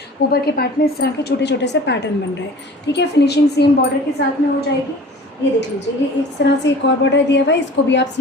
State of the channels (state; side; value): normal; both; correlation 0.43